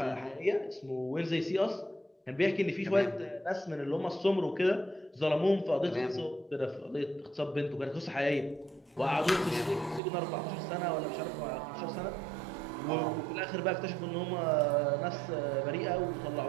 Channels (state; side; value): drops out; left; at 10.0 s